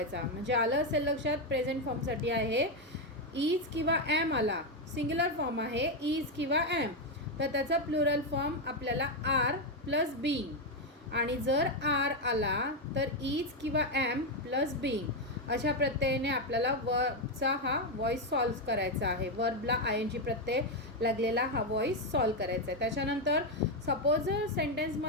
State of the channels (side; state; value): both; normal; correlation 0.06